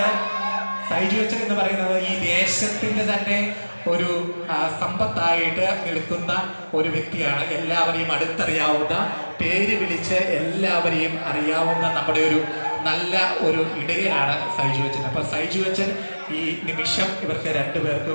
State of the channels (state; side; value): inverted; both; correlation -1.00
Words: പറയുന്നത് ഈ ദേശത്തിന്റെ തന്നെ ഒരു സമ്പത്തായിട്ട് നിൽക്കുന്ന ഒരു വ്യക്തിയാണ്. എല്ലാവരെയും അടുത്തറിയാവുന്ന, പേര് വിളിച്ച് എല്ലാവരെയും അറിയാവുന്ന നമ്മുടെ ഒരു നല്ല ഒരു ഇടയനാണ് സൈജു അച്ഛൻ. അപ്പൊ സൈജു അച്ഛൻ ഈ നിമിഷം ഇവർക്ക്